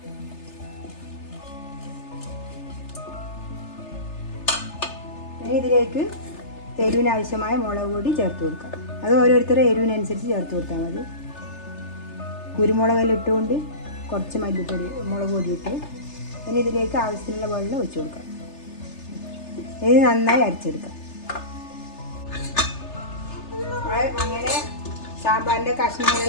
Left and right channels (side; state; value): right; late; 3.3 ms